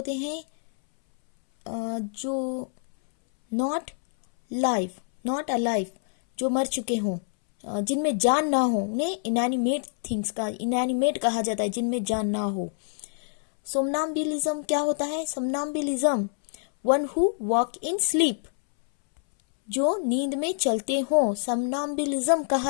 हैं? जो नॉट लाइव, नॉट अलाइव, जो मर चुके हों, जिनमें जान ना हो, उन्हें इनएनिमेट थिंग्स का इनएनिमेट कहा जाता है, जिनमें जान ना हो। सोमनाम्बुलिज्म क्या होता है? Somnambulism, one who walk in sleep, जो नींद में चलते हों, सोमनाम्बुलिज्म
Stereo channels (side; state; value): right; silent; 61 dB below the other